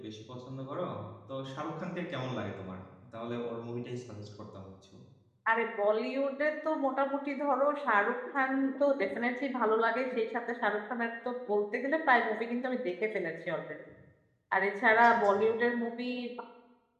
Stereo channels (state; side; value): identical; both; correlation 1.00